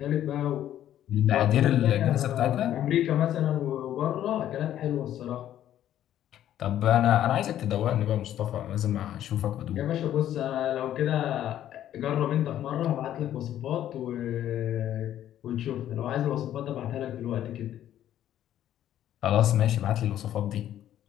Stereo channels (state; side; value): quieter; right; 11.6 dB